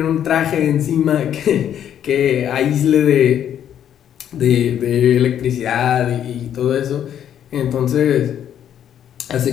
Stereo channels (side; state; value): right; quieter; 9.9 dB